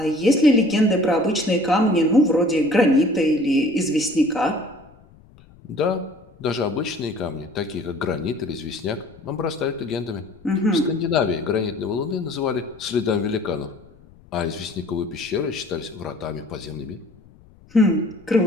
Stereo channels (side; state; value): left; noise; rumble, 26 dB below the sound